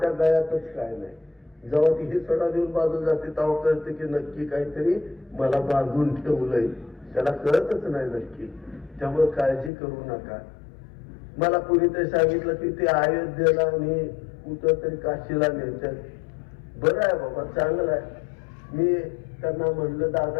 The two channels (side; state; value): right; drops out; at 9.7 s